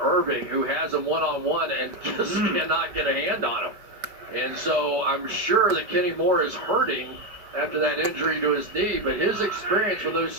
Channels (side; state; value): left; late; 5.1 ms